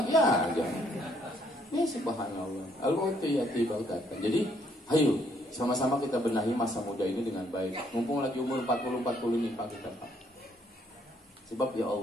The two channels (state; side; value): normal; both; correlation 0.68